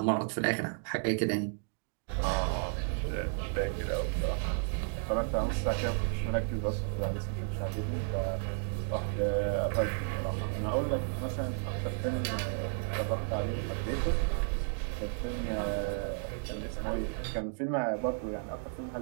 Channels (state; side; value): silent; left; 56 dB below the other